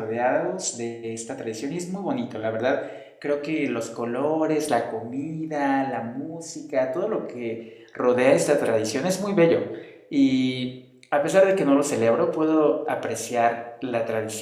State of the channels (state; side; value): identical; both; correlation 1.00